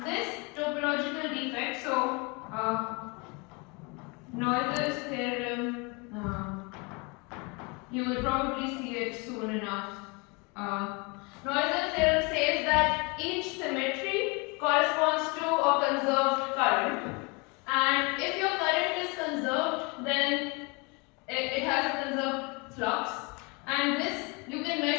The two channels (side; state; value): right; quieter; 29.6 dB